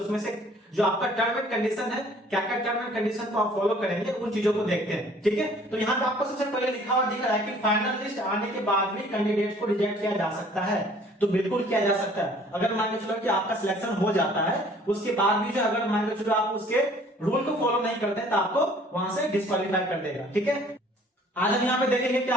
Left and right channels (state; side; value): normal; both; correlation 0.55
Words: से जो आपका टर्म एंड कंडीशन है, क्या क्या टर्म एंड कंडीशन को आप फॉलो करेंगे, उन चीजों को देखते हैं। ठीक है, तो यहाँ पे आपको सबसे पहले लिखा हुआ दिख रहा है कि फाइनल लिस्ट आने के बाद भी कैंडिडेट को रिजेक्ट किया जा सकता है। तो बिल्कुल किया जा सकता है। अगर मान के चलो कि आपका सिलेक्शन हो जाता है, उसके बाद भी जो अगर मान के चलो आप उसके रूल को फॉलो नहीं करते हैं तो आपको वहां से डिस्क्वालीफाई कर देगा। ठीक है, आज हम यहाँ पे देखेंगे कि